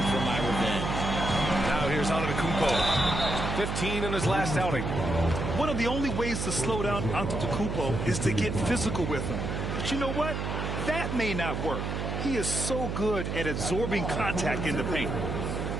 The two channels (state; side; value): noise; right; hum, 3 dB below the sound